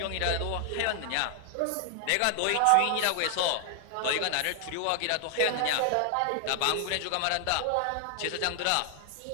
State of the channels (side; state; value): both; different; correlation 0.00